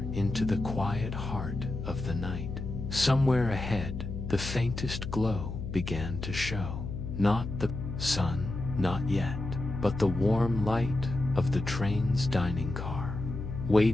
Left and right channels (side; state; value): left; noise; hum, 6 dB below the sound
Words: into the quiet heart of the night. Somewhere ahead, the faintest glow began to show. Not the sun, not yet, but the warm light of the train's dining car,